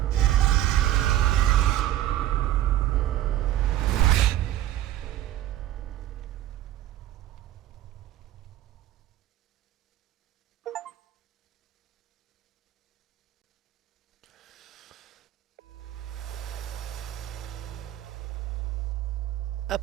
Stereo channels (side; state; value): left; quieter; 13.2 dB